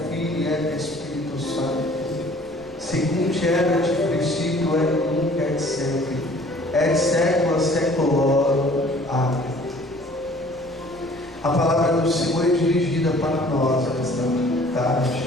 Filii et Espírito Santo, segundo erat princípio et nunc et sempre, et secula seculorum. Amém. A palavra do Senhor é dirigida para nós esta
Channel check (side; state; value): right; noise; rumble, 25 dB below the sound